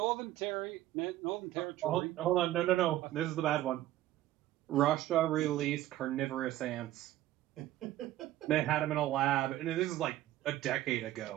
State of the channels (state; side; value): quieter; left; 14.4 dB